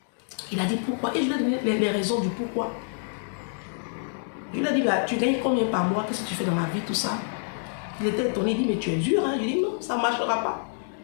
Il a dit pourquoi. Et je lui ai donné les raisons du pourquoi. Je lui ai dit, bah, tu gagnes combien par mois? Qu'est-ce que tu fais dans la vie, tout ça? Il était étonné, il dit, mais tu es dur. Hein? Je lui ai dit, non, ça ne marchera pas.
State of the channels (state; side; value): silent; right; digital silence